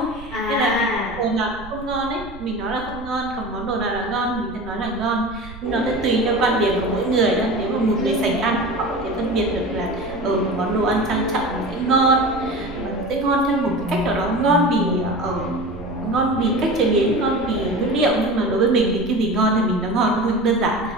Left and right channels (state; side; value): noise; right; rumble, 16 dB below the sound